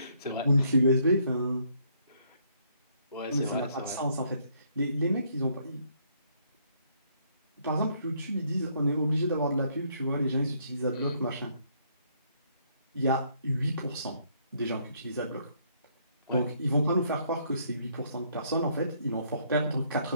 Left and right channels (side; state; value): both; inverted; correlation -0.69